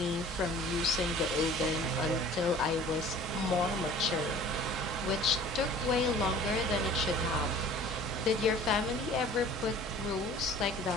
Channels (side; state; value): both; normal; correlation 0.47